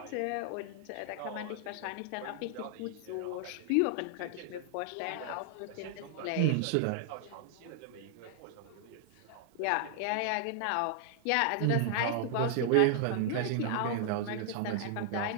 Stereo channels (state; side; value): different; both; correlation -0.01